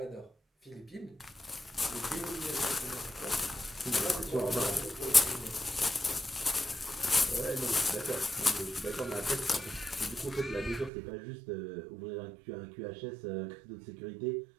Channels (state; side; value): drops out; left; at 10.9 s